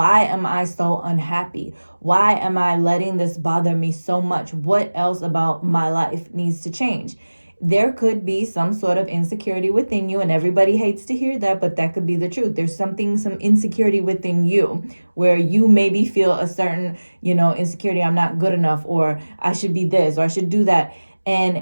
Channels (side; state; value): both; inverted; correlation -1.00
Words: am I so unhappy? Why am I letting this bother me so much? What else about my life needs to change? There could be some sort of insecurity within you, and everybody hates to hear that, but that could be the truth. There's some insecurity within you where you maybe feel a certain, insecurity. I'm not good enough, or I should be this, or I should do that.